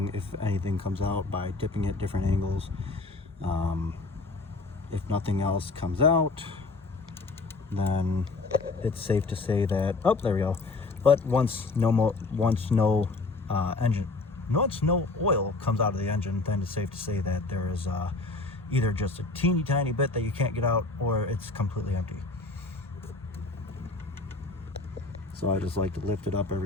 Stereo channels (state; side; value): quieter; right; 3.6 dB